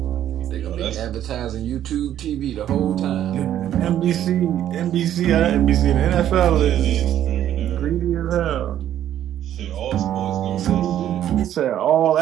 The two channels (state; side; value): quieter; left; 11.3 dB